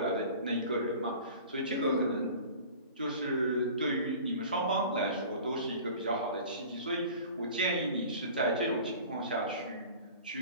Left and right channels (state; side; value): inverted; both; correlation -0.41